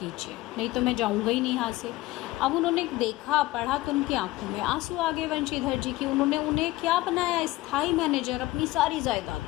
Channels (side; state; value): right; quieter; 18.5 dB